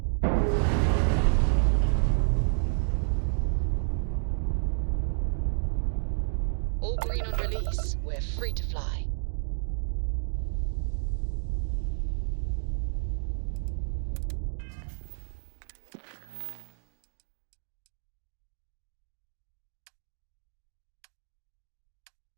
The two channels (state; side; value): silent; left; digital silence